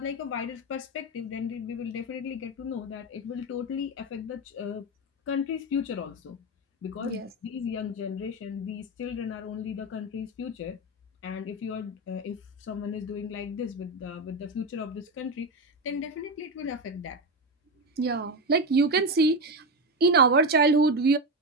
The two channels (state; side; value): normal; both; correlation 0.14